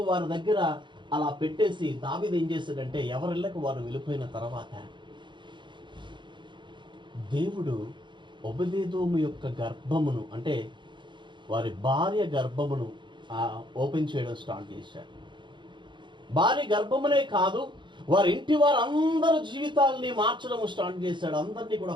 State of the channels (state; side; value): late; left; 0.23 ms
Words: వారి దగ్గర అలా పెట్టేసి దావీదు ఏం చేశాడంటే, ఎవరిళ్ళకు వారు వెళ్ళిపోయిన తర్వాత దేవుడు ఒబెదేదోము యొక్క గర్భమును, అంటే వారి భార్య గర్భమును ఓపెన్ చేయడం స్టార్ట్ చేశాడు. భార్య గర్భమునే కాదు, వారి ఇంటి వారందరూ జీవితాలని మార్చడం స్టార్ట్ చేశాడు. అందరినీ కూడా